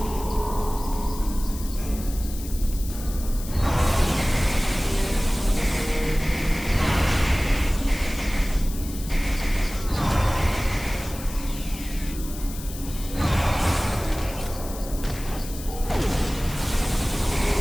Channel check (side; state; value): left; noise; hiss, 13 dB below the sound